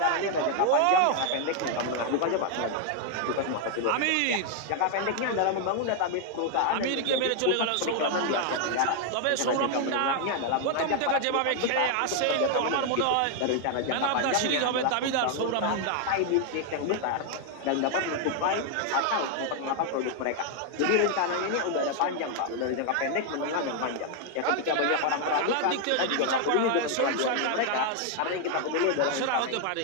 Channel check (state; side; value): different; both; correlation 0.00